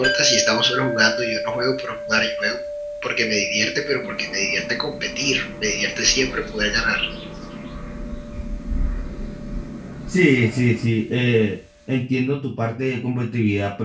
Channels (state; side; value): identical; both; correlation 1.00